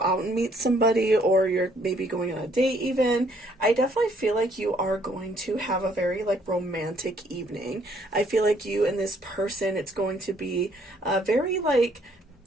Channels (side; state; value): both; normal; correlation 0.65